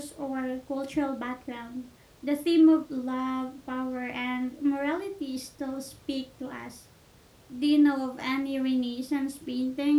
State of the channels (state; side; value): identical; both; correlation 1.00